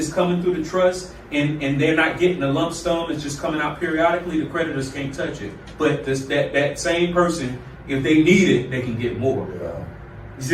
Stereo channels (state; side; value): identical; both; correlation 1.00